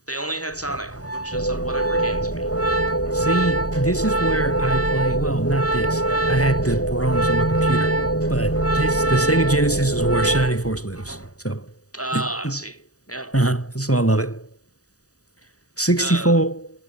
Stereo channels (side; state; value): right; late; 0.66 ms